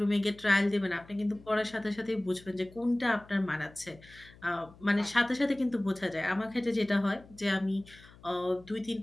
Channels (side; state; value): left; noise; hum, 23 dB below the sound